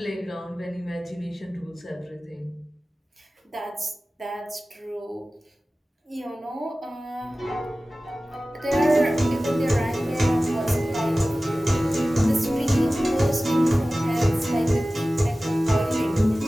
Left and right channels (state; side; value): normal; both; correlation 0.96